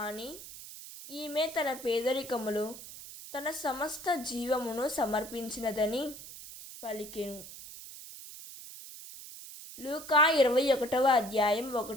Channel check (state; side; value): noise; right; hiss, 14 dB below the sound